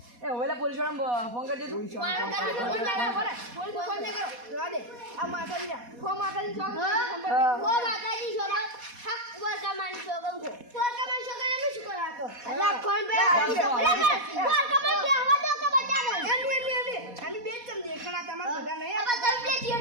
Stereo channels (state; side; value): late; left; 4.1 ms